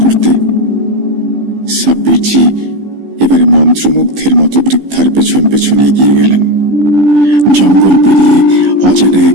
করতে। সাব্বিরজি এবারে মন্ত্রমুগ্ধের মতো বৃদ্ধার পেছন পেছনে এগিয়ে গেলেন। জঙ্গল পেরিয়ে অজানা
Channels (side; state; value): left; late; 15 ms